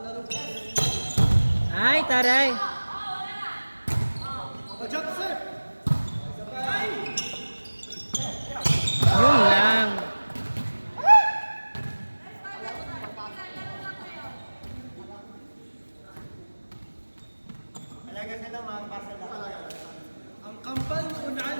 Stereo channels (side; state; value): both; inverted; correlation -1.00